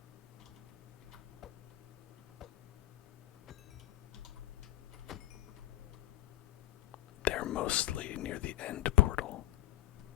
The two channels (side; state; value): right; quieter; 15.0 dB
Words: They're mostly near the end portal.